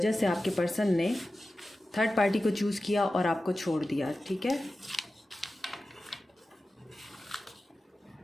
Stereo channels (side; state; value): both; normal; correlation 0.94